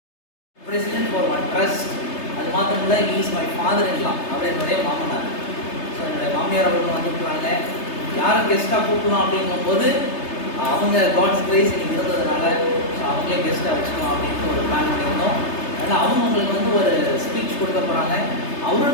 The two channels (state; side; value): late; right; 3.3 ms